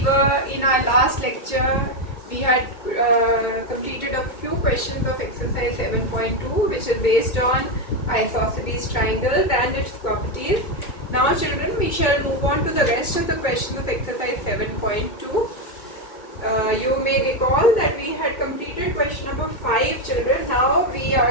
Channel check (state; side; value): late; right; 2.2 ms